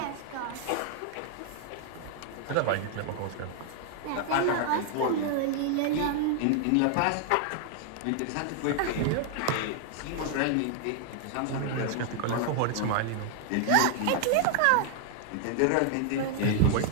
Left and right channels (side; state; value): both; different; correlation 0.00